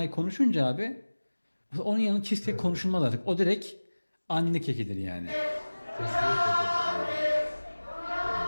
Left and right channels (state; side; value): inverted; both; correlation -1.00